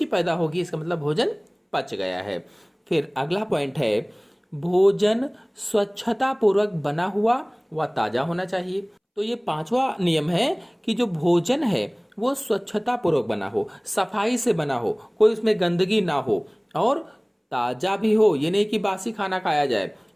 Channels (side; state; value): both; identical; correlation 1.00